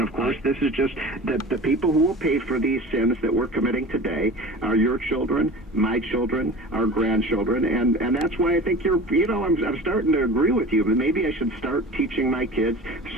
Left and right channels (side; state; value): both; normal; correlation 0.36